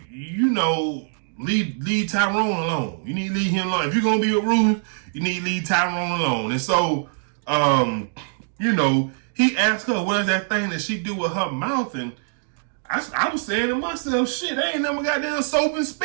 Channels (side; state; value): left; silent; digital silence